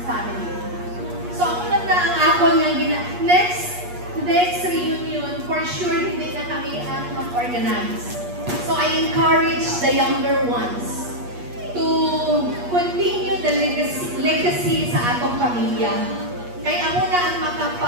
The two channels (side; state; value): left; late; 8.4 ms